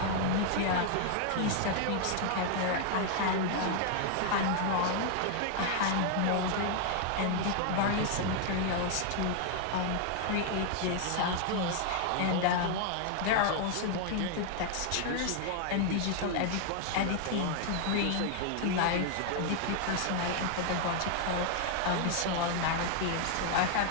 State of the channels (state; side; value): different; both; correlation 0.00